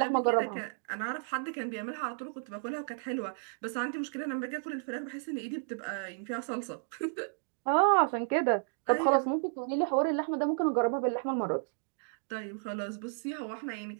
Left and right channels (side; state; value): left; silent; digital silence